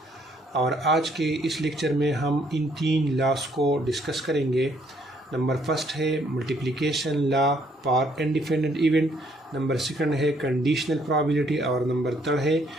और आज के इस लेक्चर में हम इन 3 लॉस को डिस्कस करेंगे। नंबर फर्स्ट है multiplication law for independent event, number second है कंडीशनल प्रोबेबिलिटी और नंबर थर्ड है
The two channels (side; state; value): both; normal; correlation 0.67